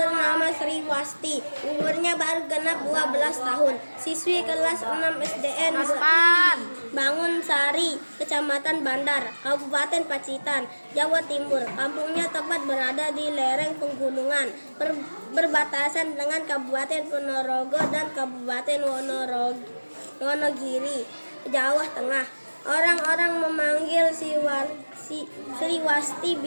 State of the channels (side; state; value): both; inverted; correlation -1.00